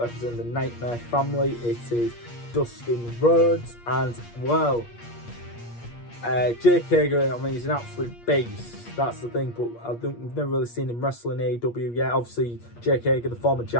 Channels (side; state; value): right; late; 8.5 ms